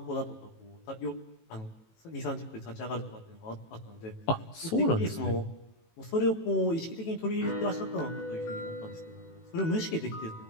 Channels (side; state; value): right; late; 18 ms